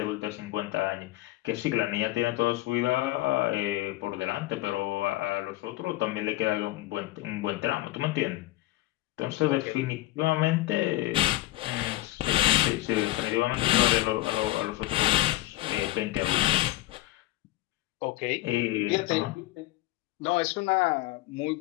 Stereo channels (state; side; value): quieter; right; 17.5 dB